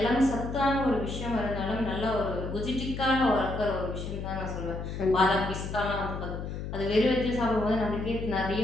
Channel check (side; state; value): left; noise; hum, 6 dB below the sound